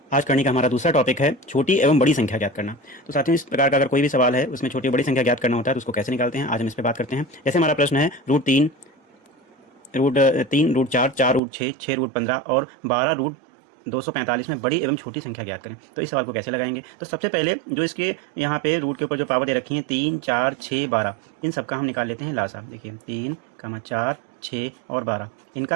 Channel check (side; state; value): left; drops out; at 11.4 s